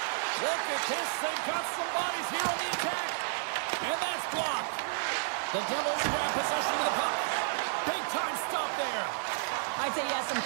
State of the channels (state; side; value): silent; left; 57 dB below the other